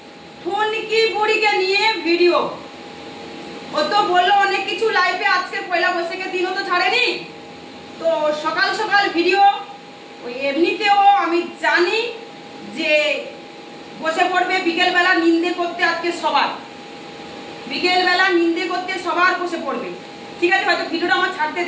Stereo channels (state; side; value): identical; both; correlation 1.00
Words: ঠুনকি বুড়িকে নিয়ে ভিডিও। ও তো বললো অনেক কিছু লাইভে, আজকে পয়লা বৈশাখের দিনও তো ছাড়েনি, তো সকাল সকাল ভিডিও। ওই এমনিতেও আমি জানি যে বসে পড়বে বিকেলবেলা নিন্দে করতে, আজকে সবার বিকেলবেলা নিন্দে করতে সবার বসে পড়বে। ঠিক আছে, হয়তো ভিডিওটা আমার ছাড়তে